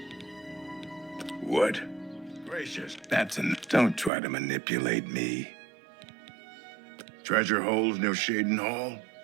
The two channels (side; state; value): left; drops out; at 4.1 s